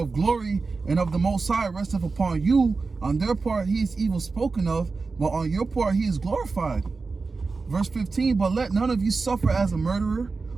glory and of the Most High resteth upon you. On their part he is evil spoken of, but on your part he is glorified. Verse 15, but let none of you suffer as a murderer,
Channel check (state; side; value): quieter; left; 4.2 dB